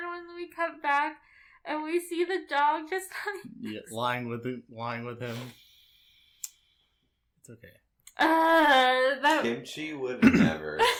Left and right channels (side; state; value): both; identical; correlation 1.00